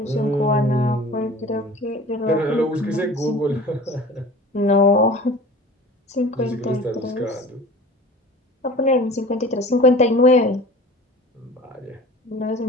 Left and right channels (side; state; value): both; normal; correlation 0.41